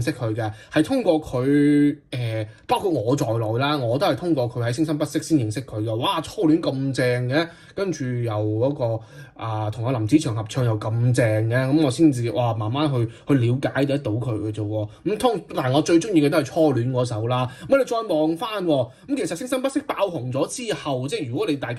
識佢嘅，係通過佢包括我在內啦，我都係通過佢喺聲生不息先認識佢嘅。哇，初戀咁正嘅，跟住又嗰個同阿林子祥合唱又咁正嘅，咁我先至慢慢去了解得到佢嘅啫喎。但係我最中意嘅都係初戀嗰首啦。咁你再望翻咁，其實聲生不息爆紅咗之後，即係如果你大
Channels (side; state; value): both; identical; correlation 1.00